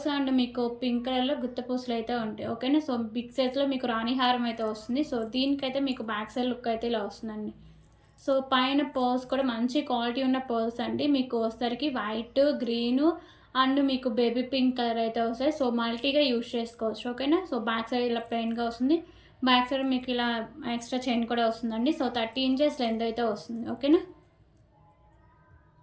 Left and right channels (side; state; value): both; identical; correlation 1.00